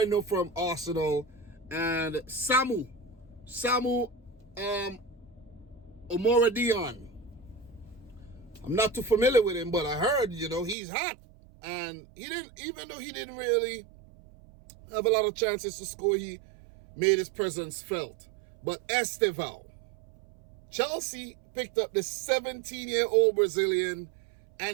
I know from Arsenal, and Samu Omora Dion. I'm not too familiar with him, but I heard, you know, he's hot. And even though he didn't really have a lot of chances to score, he made his presence felt. But Estevao, Chelsea picked up the 17-year-old Brazilian,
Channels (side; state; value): left; drops out; at 10.8 s